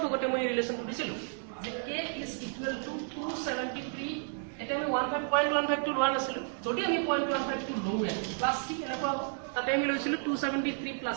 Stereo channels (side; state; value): left; silent; 56 dB below the other